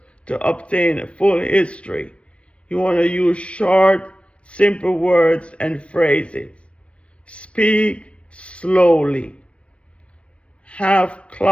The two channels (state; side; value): late; right; 0.061 ms